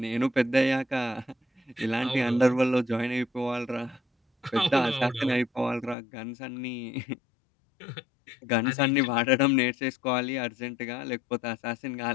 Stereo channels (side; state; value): right; drops out; at 6.0 s